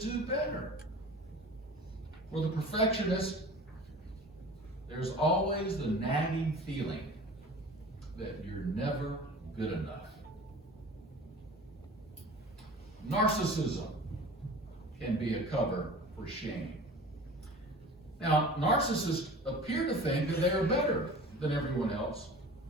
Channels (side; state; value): both; normal; correlation 0.40